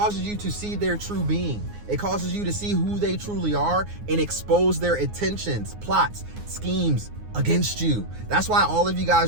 see their true being. It causes you to see who they truly are and expose their intentions, plots, schemes against you. That's why all of you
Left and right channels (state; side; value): late; left; 9.6 ms